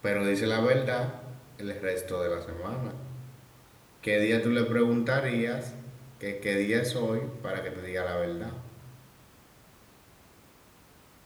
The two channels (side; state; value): both; identical; correlation 1.00